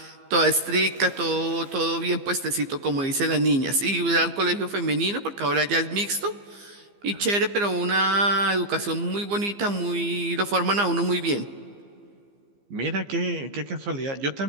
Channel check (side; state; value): left; late; 15 ms